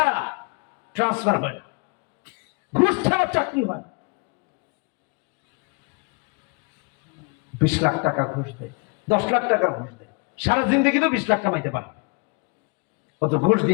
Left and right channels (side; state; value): right; quieter; 31.8 dB